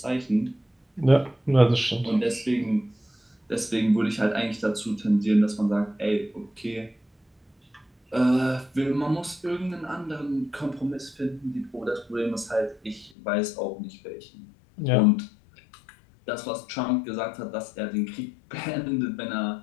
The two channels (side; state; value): right; drops out; at 13.1 s